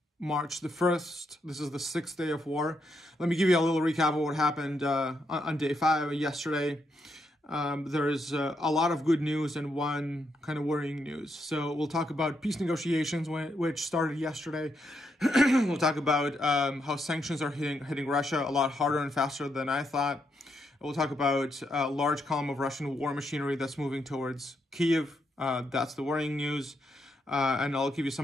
March the 1st. This is the 6th day of war. Let me give you a little recap of what happened on day 5 yesterday. There is a lot of good news and one kind of worrying news. So we'll talk about peace negotiations, which started yesterday. We'll talk about how sanctions are hitting Russia a lot harder and faster than I thought. We'll talk about a large column of Russian war machinery that's moving towards Kyiv. That's the worrying news. And I'll give you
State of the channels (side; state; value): both; normal; correlation 0.79